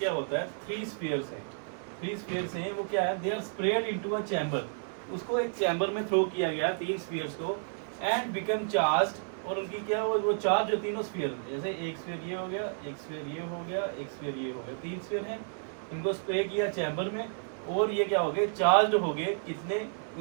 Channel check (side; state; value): left; silent; 57 dB below the other